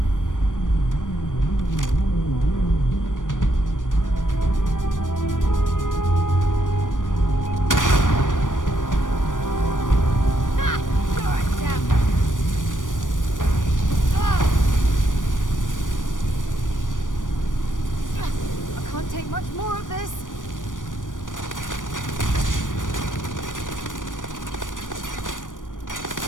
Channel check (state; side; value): late; right; 0.88 ms